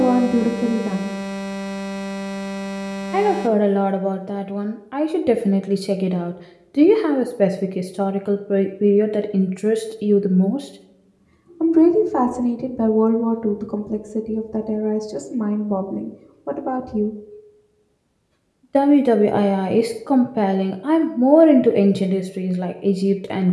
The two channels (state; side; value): identical; both; correlation 1.00